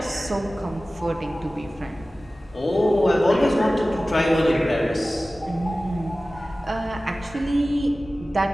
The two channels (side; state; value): both; normal; correlation 0.97